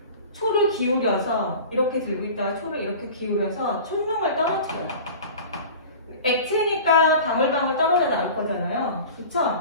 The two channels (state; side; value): inverted; both; correlation -0.38